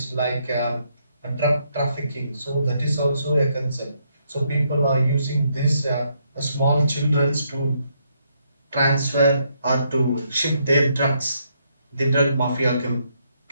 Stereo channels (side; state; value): both; inverted; correlation -0.75